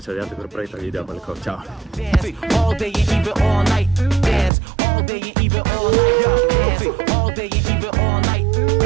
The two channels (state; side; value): drops out; left; at 4.5 s